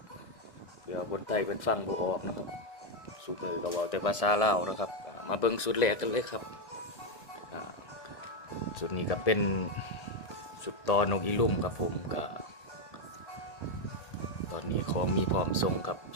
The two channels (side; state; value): right; late; 1.6 ms